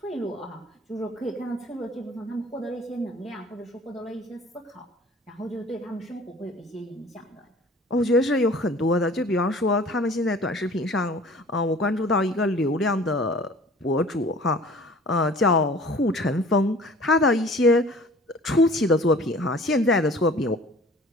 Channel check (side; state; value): both; normal; correlation 0.48